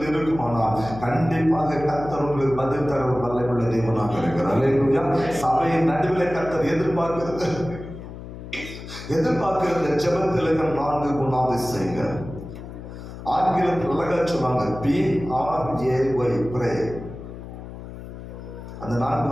இருக்குமானால் கண்டிப்பாக கர்த்தர் உங்களுக்கு பதில் தர வல்லமையுள்ள தேவனாக இருக்கிறார். அல்லேலூயா. சபையின் நடுவில் கர்த்தர் எதிர்பார்க்கிறது ஜெபத்தில் இருக்கிற 4 குணாதிசயங்கள். ஆங்கிலத்தில் அழகா சொன்னாங்க, PRAY, ப்ரே. அந்த 4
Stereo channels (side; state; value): left; noise; hum, 12 dB below the sound